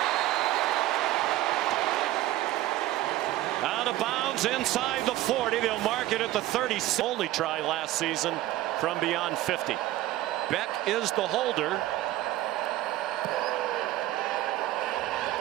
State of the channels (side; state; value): left; quieter; 15.4 dB